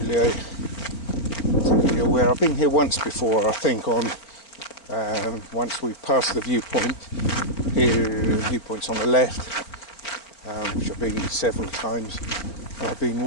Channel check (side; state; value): right; late; 4.5 ms